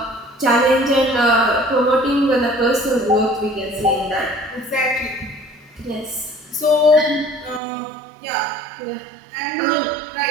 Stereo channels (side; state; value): left; drops out; at 7.6 s